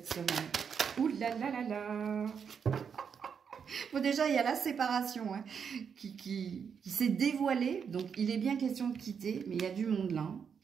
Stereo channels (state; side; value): quieter; left; 6.8 dB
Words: semaine? Ouh là là là là. Bon, déjà, il y a la séparation hein, qui s'est dévoilée. Donc, il est bien question de quitter, mais il y a du monde là.